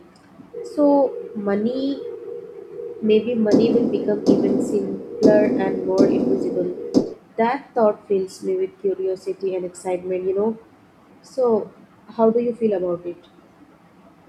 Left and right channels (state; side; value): identical; both; correlation 1.00